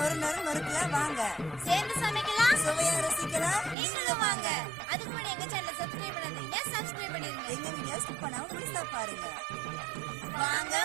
நொறு நொறுக்குலாம் வாங்க. சேர்ந்து சமைக்கலாம், சுவையா ரசிக்கலாம். நீங்களும் வாங்க. அதுக்கு முன்னாடி எங்க சேனலை சப்ஸ்கிரைப் பண்ணாதீங்க, சப்ஸ்கிரைப் பண்ணிருங்க. எங்க வீடியோ ஸ்கிப் பண்ணாம முழுசா பாருங்க. வாங்க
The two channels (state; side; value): drops out; left; at 3.8 s